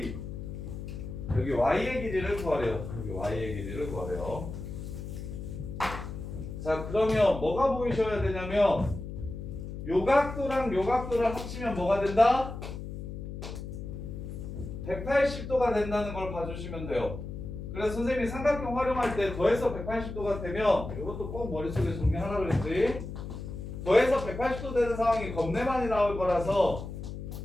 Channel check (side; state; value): left; noise; hum, 8 dB below the sound